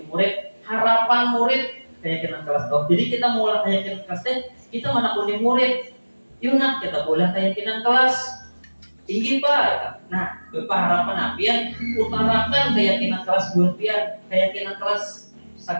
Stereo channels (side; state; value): both; inverted; correlation -1.00